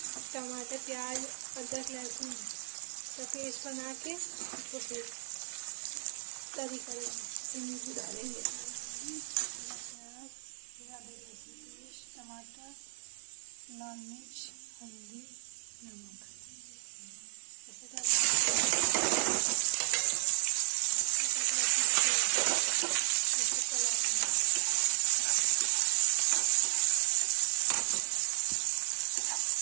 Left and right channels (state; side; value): silent; left; 56 dB below the other